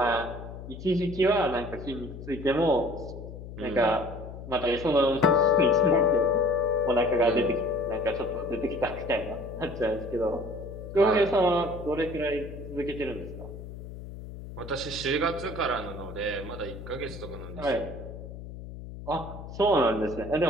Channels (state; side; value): noise; left; hum, 12 dB below the sound